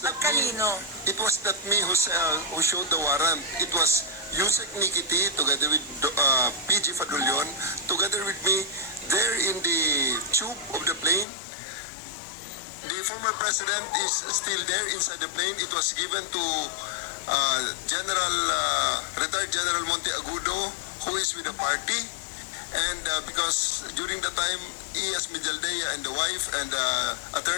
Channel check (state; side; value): drops out; right; at 11.2 s